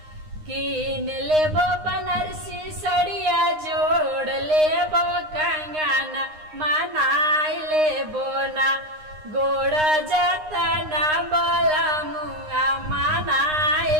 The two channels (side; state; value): left; late; 9.7 ms